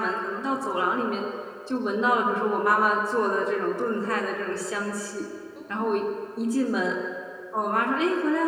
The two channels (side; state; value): both; identical; correlation 1.00